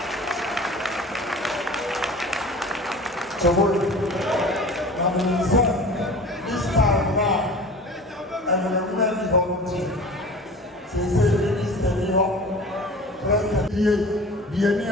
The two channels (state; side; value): normal; both; correlation 0.39